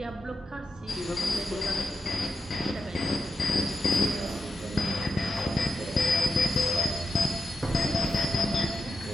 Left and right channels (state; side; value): normal; both; correlation 0.87